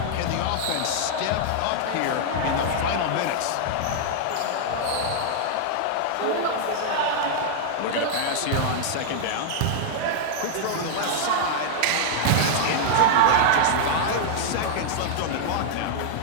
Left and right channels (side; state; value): both; different; correlation -0.01